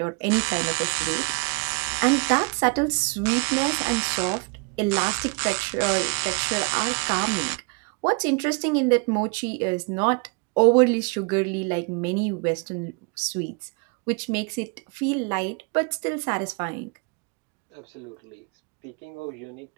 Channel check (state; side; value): quieter; left; 34.1 dB